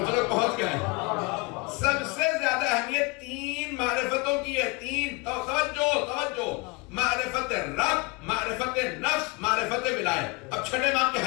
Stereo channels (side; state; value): right; quieter; 27.6 dB